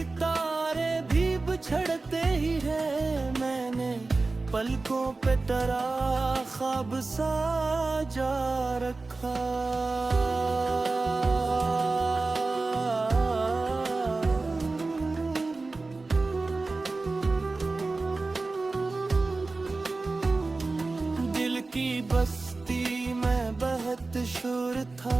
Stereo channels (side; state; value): left; quieter; 3.6 dB